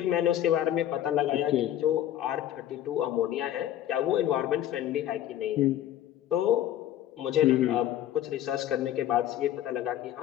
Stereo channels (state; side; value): quieter; right; 12.0 dB